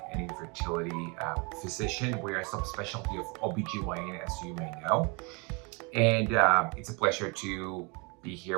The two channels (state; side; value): quieter; left; 30.8 dB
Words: and infertility physician. We are a subspecialty of OBGYN, as you may know. And it's a pleasure to be here